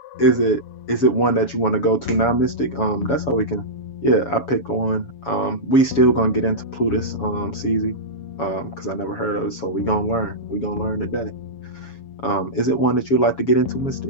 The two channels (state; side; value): late; right; 7.1 ms